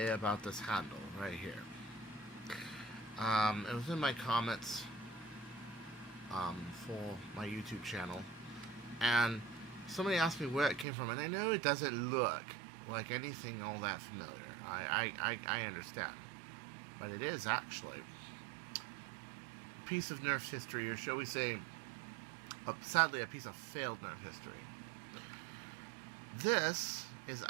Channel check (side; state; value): left; drops out; at 10.9 s